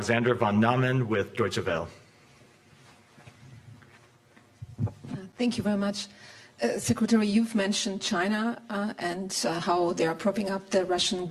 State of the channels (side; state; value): both; identical; correlation 1.00